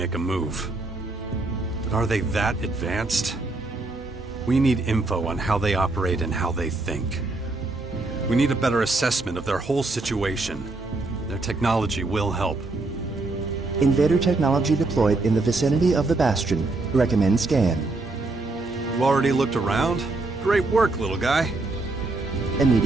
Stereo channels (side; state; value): left; quieter; 3.2 dB